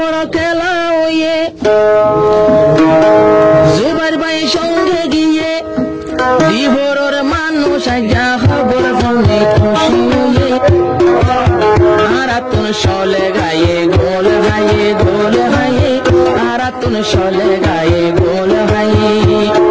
খেলা হইয়ে জুবাইর ভাই সঙ্গে গিয়ে দিবরর মানুষ আইজা খবর ফোনে খুশি হইয়ে আরাতুন চলে গায়ে গোল হাইয়ে গোল হাইয়ে আরাতুন চলে গায়ে গোল হাইয়ে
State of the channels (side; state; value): both; identical; correlation 1.00